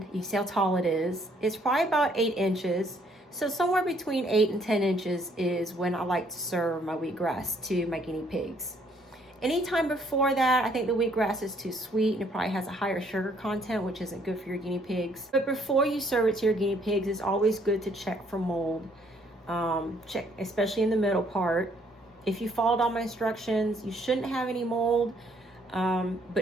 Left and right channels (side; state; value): both; normal; correlation 0.66